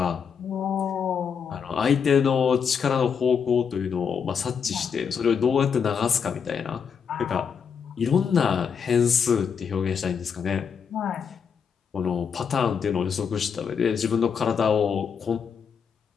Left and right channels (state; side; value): quieter; right; 6.7 dB